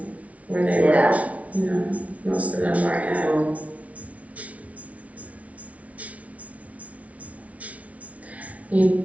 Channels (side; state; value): left; late; 0.067 ms